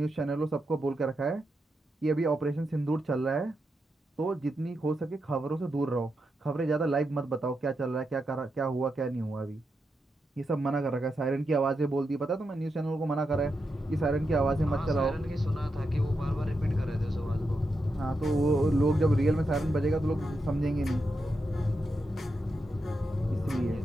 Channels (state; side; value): normal; both; correlation 0.86